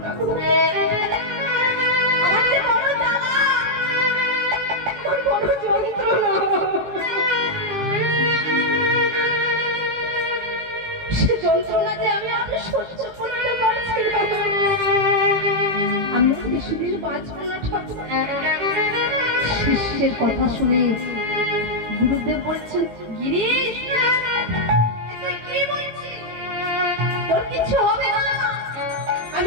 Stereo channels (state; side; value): late; left; 18 ms